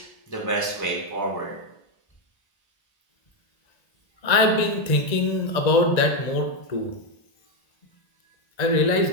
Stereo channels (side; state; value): right; late; 1.8 ms